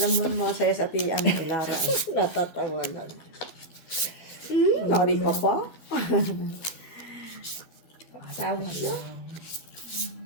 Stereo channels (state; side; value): late; right; 12 ms